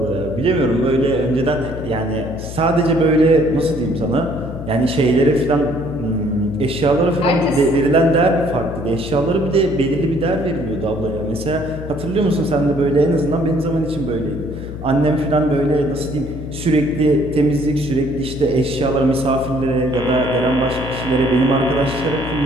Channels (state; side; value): noise; left; hum, 9 dB below the sound